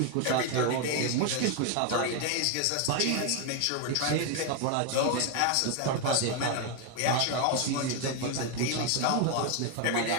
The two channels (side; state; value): both; different; correlation 0.01